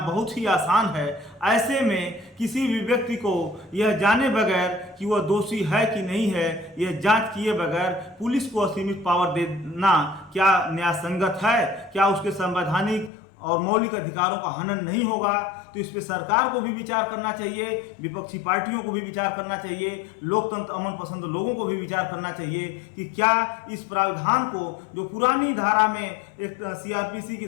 बहुत ही आसान है। ऐसे में किसी भी व्यक्ति को यह जाने बगैर कि वह दोषी है कि नहीं है, यह जांच किए बगैर पुलिस को असीमित पावर देना क्या न्याय संगत है? क्या उसके संवैधानिक और मौलिक अधिकारों का हनन नहीं होगा? तो इस पे सरकार को भी विचार करना चाहिए, विपक्षी पार्टियों को भी विचार करना चाहिए, लोकतंत्र अमन पसंद लोगों को भी विचार करना चाहिए कि क्या इस प्रावधान को, जो पुरानी धारा में एक CRPC की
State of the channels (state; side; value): drops out; right; at 13.1 s